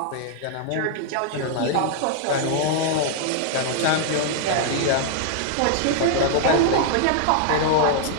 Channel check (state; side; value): different; both; correlation 0.00